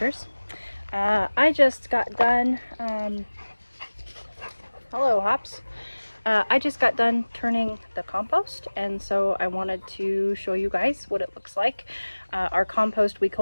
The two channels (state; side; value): inverted; both; correlation -1.00